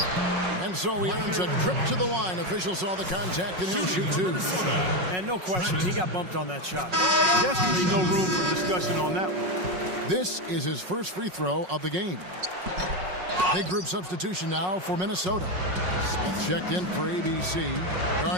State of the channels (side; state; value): left; late; 5.5 ms